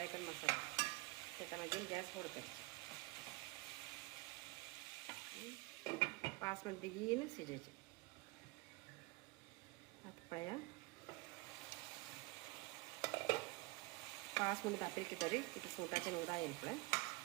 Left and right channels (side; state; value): left; quieter; 23.3 dB